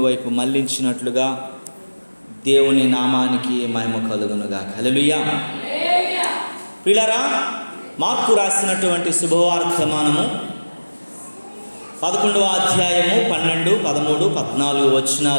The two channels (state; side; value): inverted; both; correlation -1.00